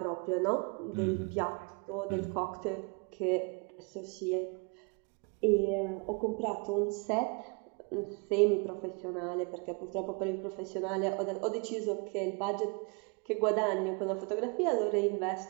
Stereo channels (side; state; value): left; quieter; 32.5 dB